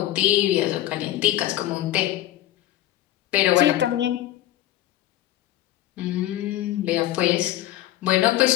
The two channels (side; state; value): right; quieter; 14.3 dB